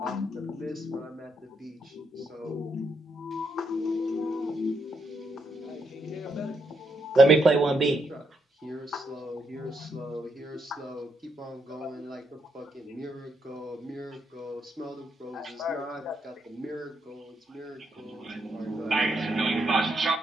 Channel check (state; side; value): normal; both; correlation 0.78